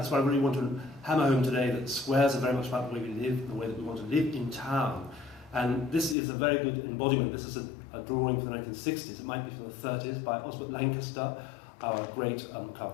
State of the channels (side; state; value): right; drops out; at 6.2 s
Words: why I really want to hammer home today that squares are very much about the way we live, the way that we want to live in town. And this is a very good embodiment. This is a drawing from the 1960s. It might be from the 30s by Osbert Lancaster, our great